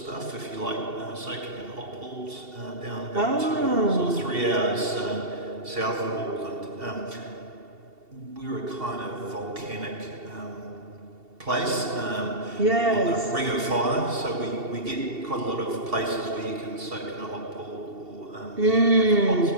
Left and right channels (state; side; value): late; left; 2.7 ms